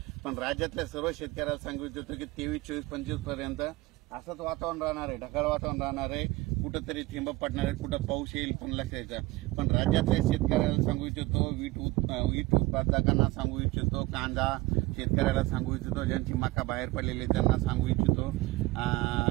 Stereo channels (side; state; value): left; quieter; 20.5 dB